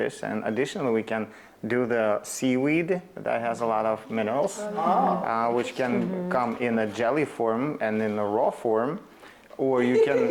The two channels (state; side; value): identical; both; correlation 1.00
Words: And additionally, we can do the seaweed that has a lot of minerals, which can come in a jelly form and in a raw form, or you can